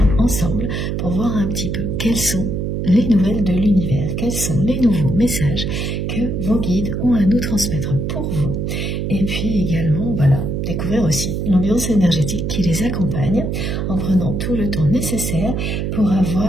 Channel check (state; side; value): noise; right; hum, 1 dB below the sound